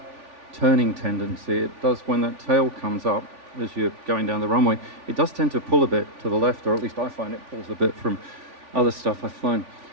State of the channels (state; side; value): late; left; 3.5 ms